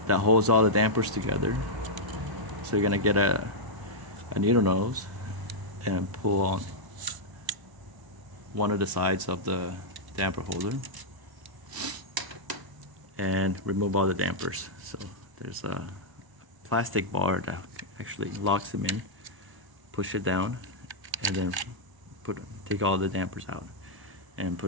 that holds all the dampers together. So you're going to get a needle nose and pull on one of the sides of the damper holder and remove all the dampers. So there's a plastic bar that actually locks them in. Push it down and then take all the dampers out and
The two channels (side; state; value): left; late; 1.0 ms